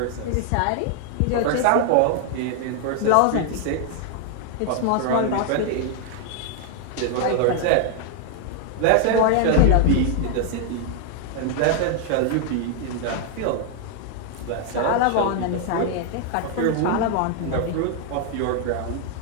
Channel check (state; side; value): different; both; correlation 0.00